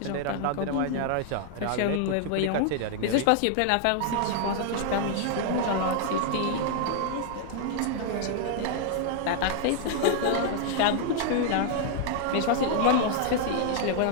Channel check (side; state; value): both; different; correlation 0.00